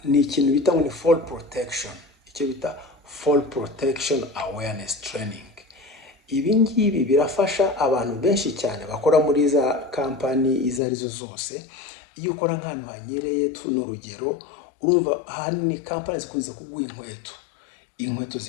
ni ikintu bita ngo ni fall protection. Icyo bita fall protection awareness training. Ibi ngibi birafasha abantu benshi cyane bakora muri za kampani izo arizo zose. Iyo ukora nk'ahantu hanyereye, tuno urugero, urumva ahanini kampani zikunze kuguha inkweto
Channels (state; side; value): drops out; right; at 10.8 s